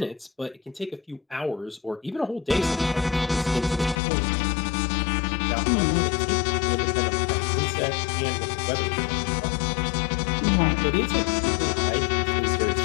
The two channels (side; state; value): right; drops out; at 4.0 s